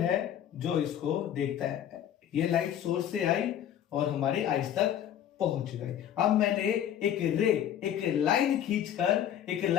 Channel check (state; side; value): quieter; right; 10.3 dB